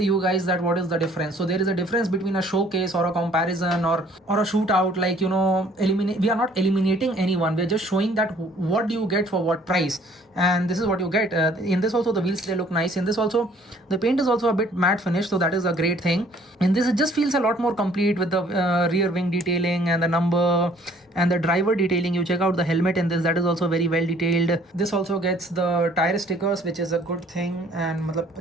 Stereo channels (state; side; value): normal; both; correlation 0.58